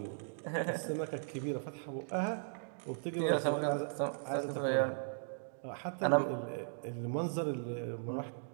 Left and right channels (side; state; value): left; silent; digital silence